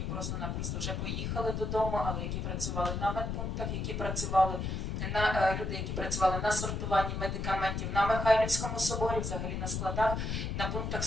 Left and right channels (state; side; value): noise; left; rumble, 2 dB below the sound